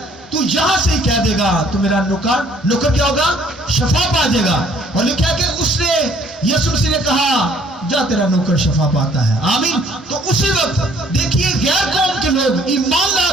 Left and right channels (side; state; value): both; normal; correlation 0.60